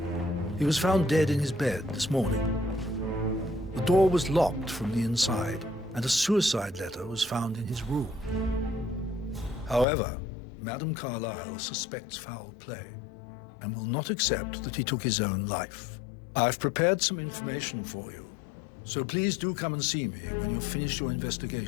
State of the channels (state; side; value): drops out; right; at 9.9 s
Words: He was found dead in his bed this morning. The door was locked from the inside, and a suicide letter was found in his room. However, Madame Carlyle suspects foul play and will not accept that he took his own life. I've prepared some information for you, so please do come and see me when you've finished your